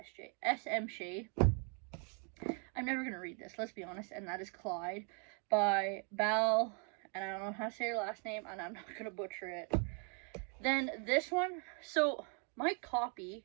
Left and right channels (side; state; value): left; quieter; 39.6 dB